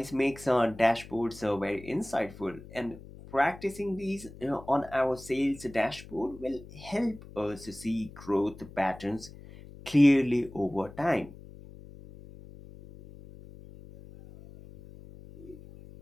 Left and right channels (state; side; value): noise; left; hum, 17 dB below the sound